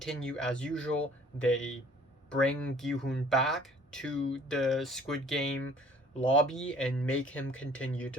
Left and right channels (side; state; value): both; normal; correlation 0.54